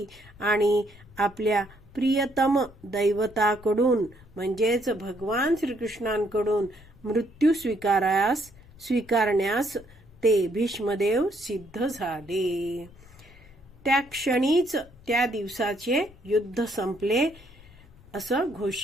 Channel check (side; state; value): left; noise; rumble, 23 dB below the sound